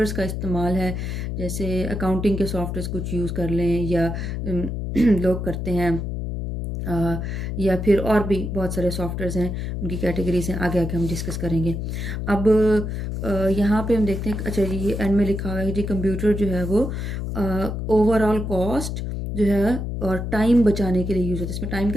का इस्तेमाल है, जैसे अकाउंटिंग के सॉफ्टवेयर्स कुछ यूज़ कर लें, या लोग करते हैं, या फिर और भी बहुत सारे सॉफ्टवेयर्स हैं, उनकी कैटेगरीज हैं, आगे आगे हम डिस्कस करेंगे। अब यहाँ पे हम देखते हैं, अच्छा ये एंड में लिखा हुआ है जी कंप्यूटर जो है वो ओवरऑल कॉस्ट जो है और टाइम बचाने के लिए यूज़ होता है। इसमें टाइम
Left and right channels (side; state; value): left; noise; hum, 3 dB below the sound